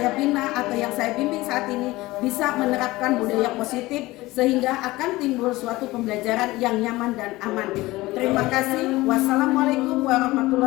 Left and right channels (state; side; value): quieter; right; 19.3 dB